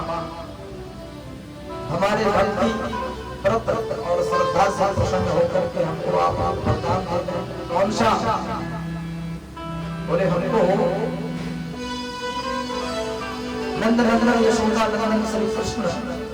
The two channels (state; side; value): identical; both; correlation 1.00